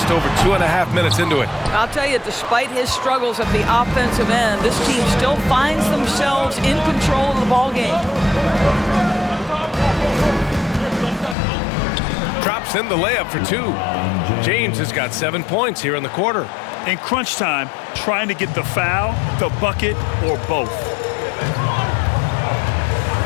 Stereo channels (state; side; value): drops out; right; at 11.4 s